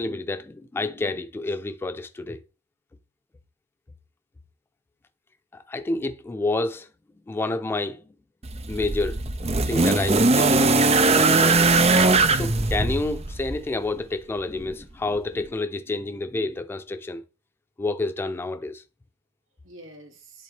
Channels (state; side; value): normal; both; correlation 0.39